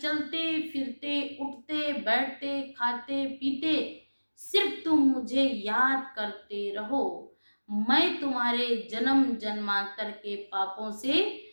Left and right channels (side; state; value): both; inverted; correlation -1.00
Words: फिरते उठते बैठते खाते पीते सिर्फ तुम मुझे याद करते रहो, मैं तुम्हारे जन्म जन्मांतर के पापों से